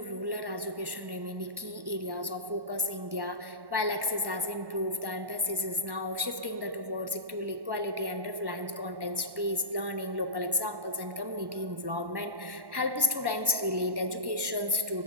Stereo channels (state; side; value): late; left; 1.1 ms